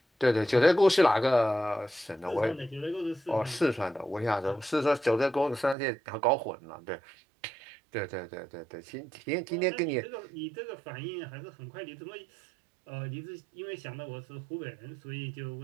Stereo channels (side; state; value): left; drops out; at 5.8 s